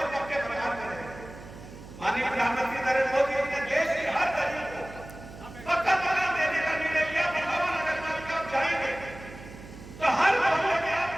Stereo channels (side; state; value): right; noise; hum, 16 dB below the sound